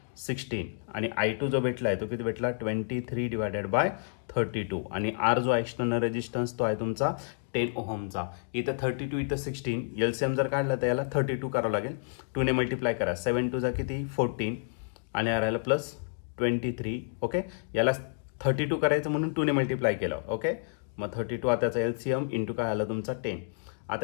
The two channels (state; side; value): silent; right; digital silence